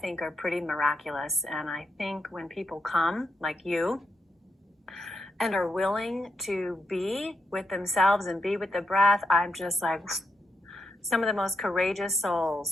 are pretty miraculous. And I think when people come, like you, and are willing to be with themselves and be with the breath, I'm just like, some of the most courageous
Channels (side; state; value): both; normal; correlation 0.83